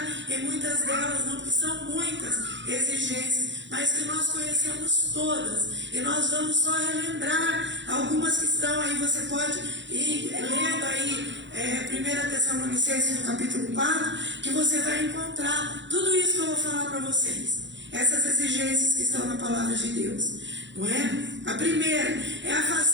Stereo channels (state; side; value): late; left; 0.53 ms